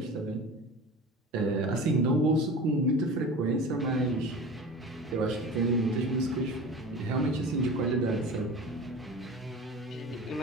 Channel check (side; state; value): both; normal; correlation 0.35